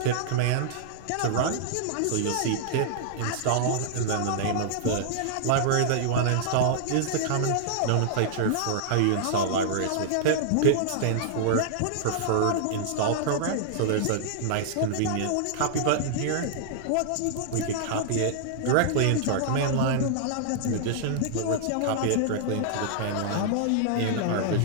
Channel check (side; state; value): both; different; correlation -0.01